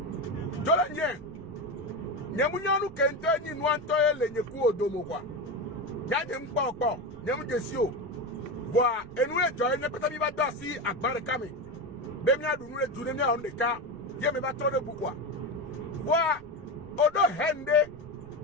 Jole njen. Nyamunyanu kente ni nwanto ele nyeku odomo kwa. Yade mpa okpo. Nyamu desio. Voa enwe joye ne peta mi ba dasi akbare kame. Bemia du nous les on de cas, je me battre de pourquoi. Voilà, odo hende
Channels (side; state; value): right; noise; rumble, 24 dB below the sound